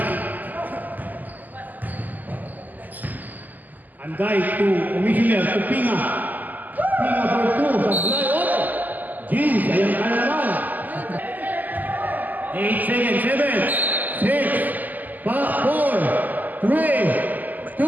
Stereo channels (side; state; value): left; late; 0.083 ms